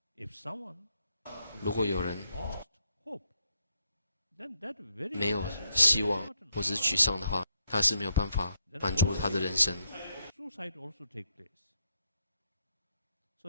if someone 如果有人 lost hope, then that very 没有希望或者是沮丧的话，他是没有办法满足他的人生。 suicide also take place.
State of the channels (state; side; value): inverted; both; correlation -0.77